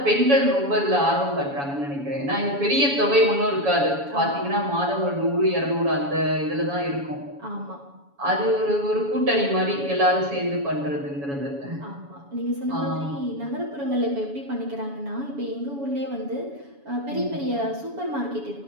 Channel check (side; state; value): left; late; 7.1 ms